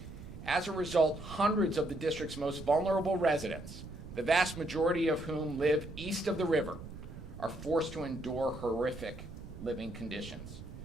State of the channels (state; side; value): noise; right; rumble, 12 dB below the sound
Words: As a result, hundreds of the district's most vulnerable residents, the vast majority of whom live east of the river, are forced to endure horrific living conditions,